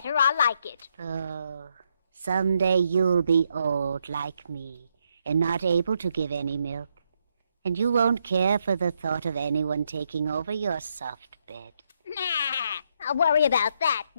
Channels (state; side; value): inverted; both; correlation -0.77